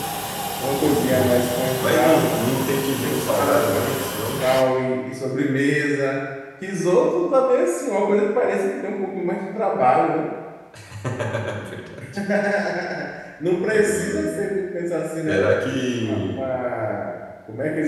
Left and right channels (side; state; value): both; identical; correlation 1.00